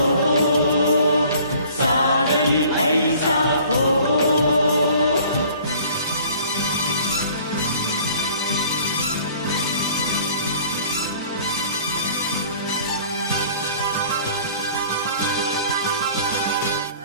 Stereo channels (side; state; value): both; inverted; correlation -0.51